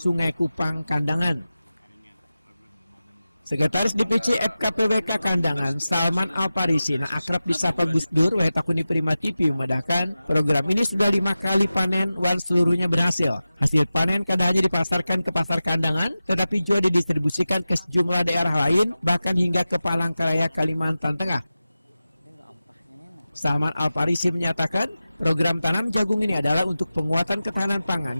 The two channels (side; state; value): both; inverted; correlation -0.94